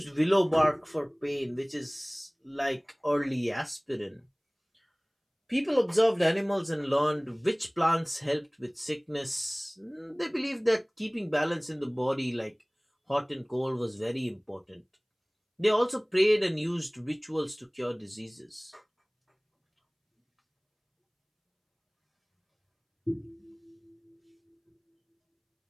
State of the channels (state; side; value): identical; both; correlation 1.00